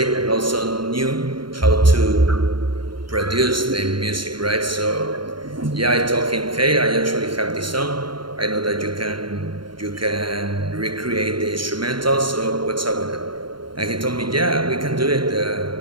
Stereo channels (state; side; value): late; left; 0.73 ms